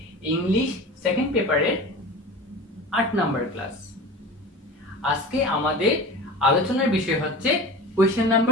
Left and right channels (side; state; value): both; normal; correlation 0.34